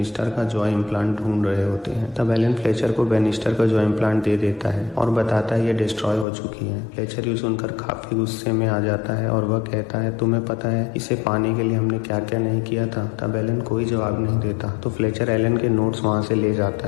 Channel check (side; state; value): right; drops out; at 6.2 s